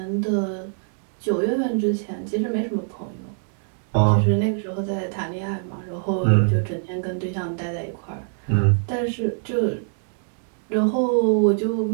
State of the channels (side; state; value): left; silent; digital silence